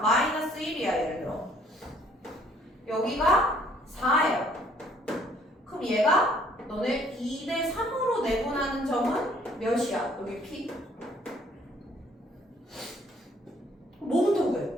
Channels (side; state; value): both; normal; correlation 0.61